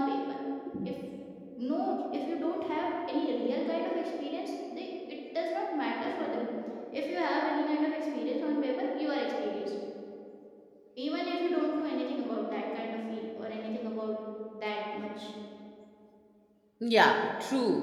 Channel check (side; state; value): both; identical; correlation 1.00